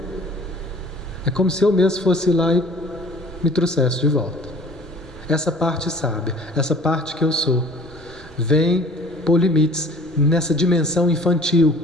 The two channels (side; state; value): both; normal; correlation 0.49